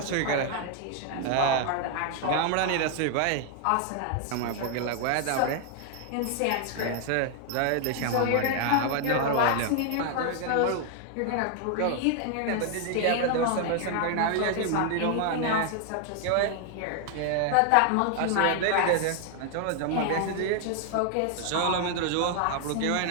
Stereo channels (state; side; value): different; both; correlation 0.00